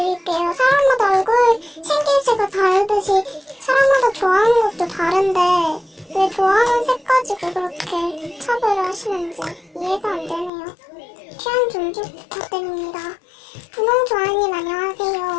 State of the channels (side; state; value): right; drops out; at 10.5 s